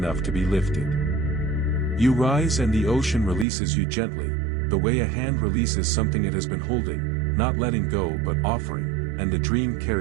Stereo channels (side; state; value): left; drops out; at 3.5 s